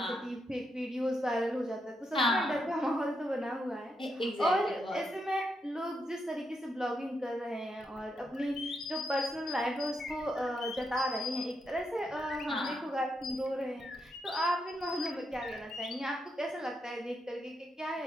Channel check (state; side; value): normal; both; correlation 0.82